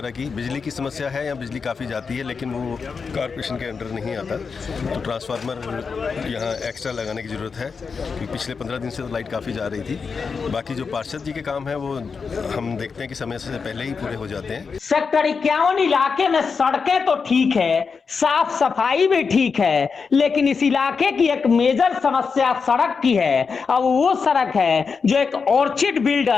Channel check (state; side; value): quieter; right; 5.3 dB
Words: की, बिजली की समस्या है या बिजली काफ़ी जाती है लेकिन वो कॉर्पोरेशन के अंडर नहीं आता, तो ट्रांसफार्मर यहाँ एक्स्ट्रा लगाने की ज़रूरत है क्योंकि पिछले 15 दिन से तो लाइट काफ़ी जा रही थी। बाकी जो पार्षद जी के काम है वो हम देखते हैं कि समय से पहले ही पूरे हो जाते हैं। सेक्टर 51 इलाके में सड़कें तो ठीक है, साफ सफाई भी ठीक है, लेकिन इस इलाके की एक मेजर समस्या सड़क की है। अब वो सड़क है जो एक ऑर्चिड